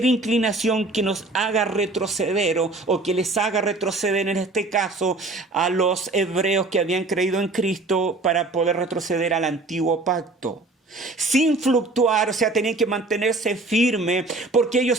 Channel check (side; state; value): left; quieter; 3.2 dB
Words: inclinación que nos haga retroceder o que les haga retroceder, en este caso, a los hebreos que habían creído en Cristo para poder retroceder al antiguo pacto. Sin fluctuar, o sea, tenían que mantenerse firme porque